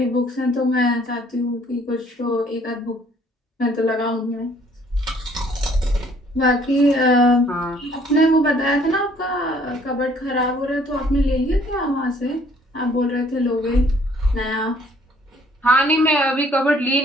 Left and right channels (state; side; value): normal; both; correlation 0.60